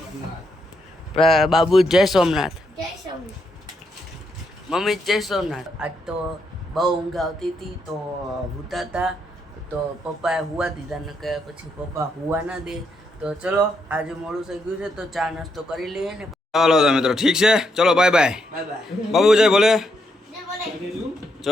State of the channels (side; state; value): both; normal; correlation 0.78